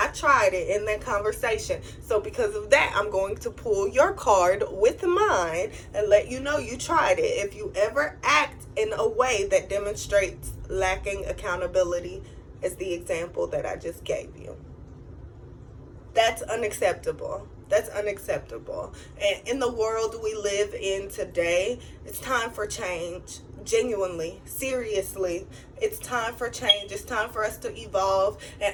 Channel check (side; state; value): both; identical; correlation 1.00